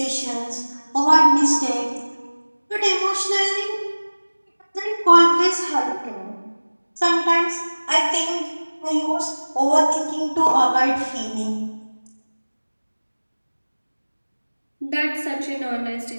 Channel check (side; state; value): both; inverted; correlation -1.00